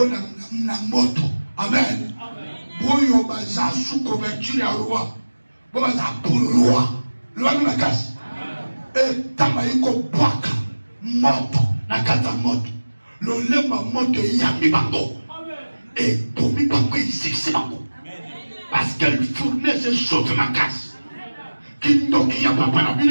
na moto. Amen. Boyo baza sous couverture ya roi. Bo baza pour roi. Loi na kasi. Et tamaiko bwaka moto na kata moto. L'olema moto yami bango. Et pour mi bango ici c'est bango. Parce qu'elle fournait ses choses ma casse. Qui n'ont a pas la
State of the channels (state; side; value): inverted; both; correlation -1.00